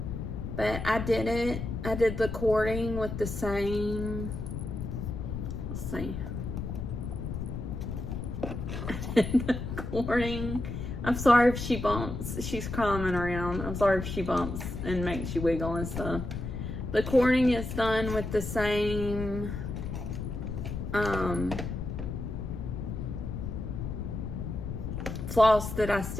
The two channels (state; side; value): noise; left; rumble, 5 dB below the sound